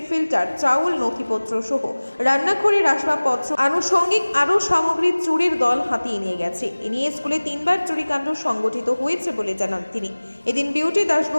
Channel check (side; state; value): both; inverted; correlation -1.00